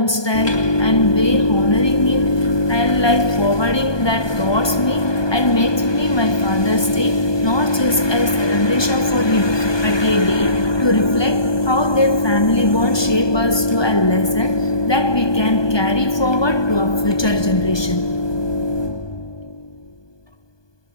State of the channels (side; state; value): right; late; 1.2 ms